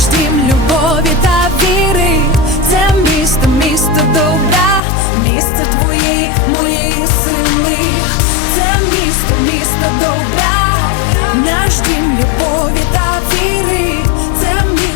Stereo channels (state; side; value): drops out; right; at 4.8 s